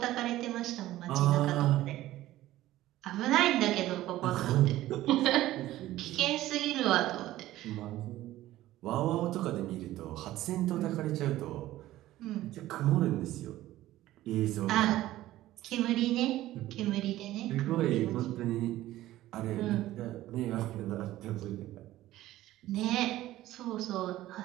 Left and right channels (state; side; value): quieter; left; 15.2 dB